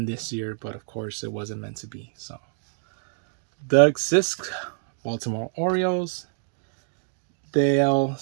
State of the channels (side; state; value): left; silent; digital silence